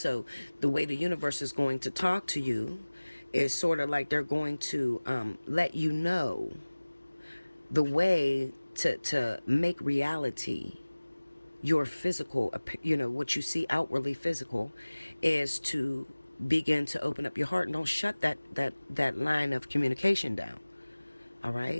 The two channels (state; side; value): inverted; both; correlation -1.00